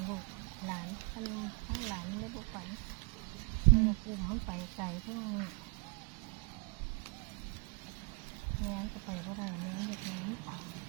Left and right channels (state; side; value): quieter; left; 34.4 dB